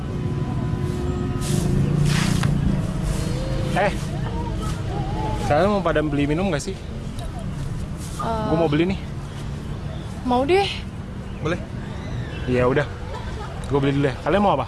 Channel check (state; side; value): identical; both; correlation 1.00